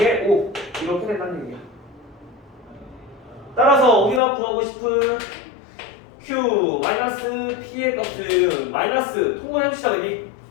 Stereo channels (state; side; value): drops out; right; at 4.2 s